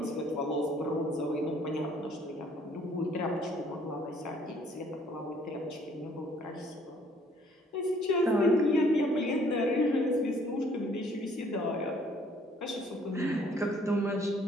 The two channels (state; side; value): normal; both; correlation 0.60